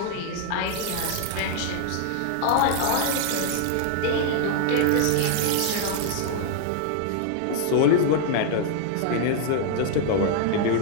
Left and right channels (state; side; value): different; both; correlation 0.00